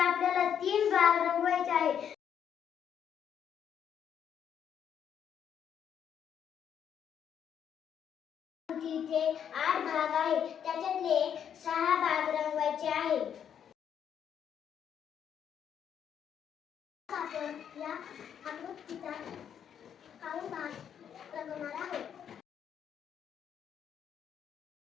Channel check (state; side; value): quieter; right; 8.6 dB